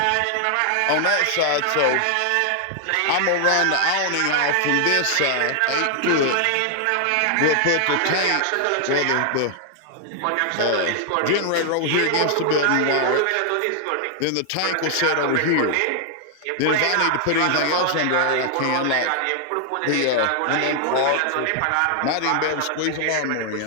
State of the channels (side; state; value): both; different; correlation 0.00